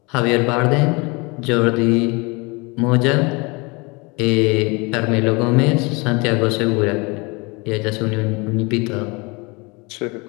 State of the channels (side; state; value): right; quieter; 27.5 dB